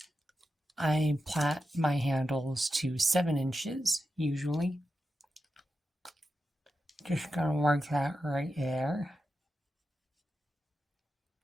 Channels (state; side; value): normal; both; correlation 0.90